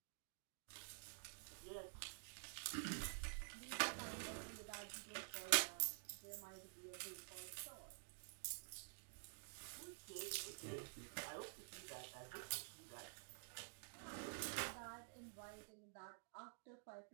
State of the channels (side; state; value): left; silent; digital silence